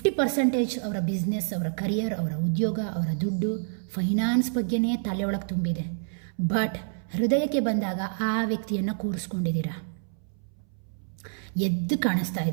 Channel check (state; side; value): silent; left; 60 dB below the other